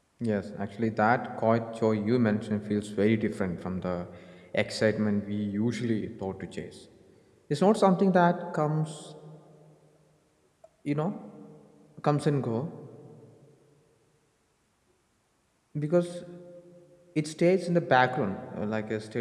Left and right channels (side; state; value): both; identical; correlation 1.00